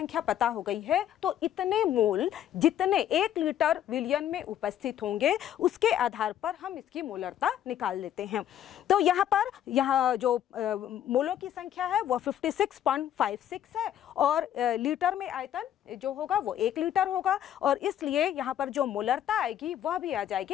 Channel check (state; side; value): quieter; right; 10.9 dB